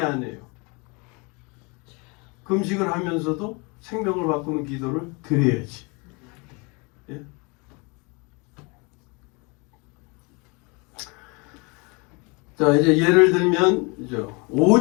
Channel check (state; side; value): quieter; right; 29.7 dB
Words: 금식을 하면서도 생명을 바꾸는 기도를 드려야지. 예? 자, 이제 예를 들면